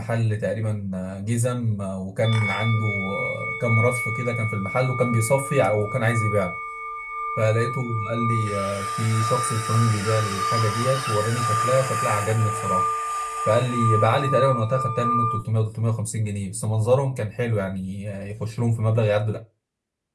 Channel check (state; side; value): identical; both; correlation 1.00